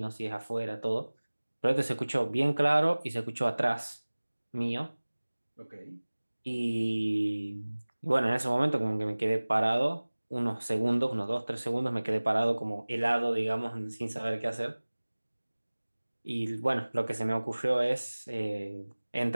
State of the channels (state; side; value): inverted; both; correlation -1.00